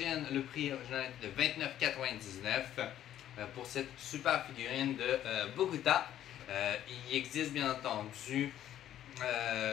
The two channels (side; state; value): right; quieter; 11.6 dB